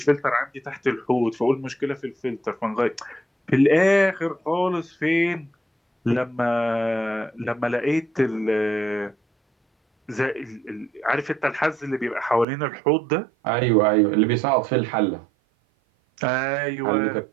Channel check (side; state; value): left; drops out; at 12.5 s